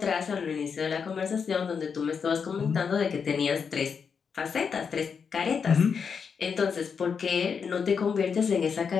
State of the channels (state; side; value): quieter; right; 6.2 dB